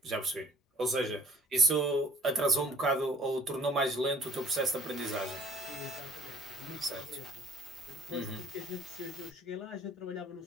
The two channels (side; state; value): both; normal; correlation 0.53